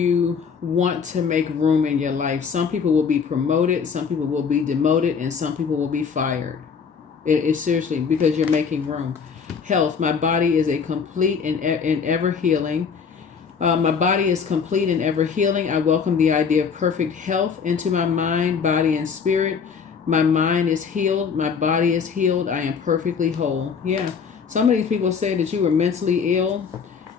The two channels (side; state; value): right; quieter; 6.2 dB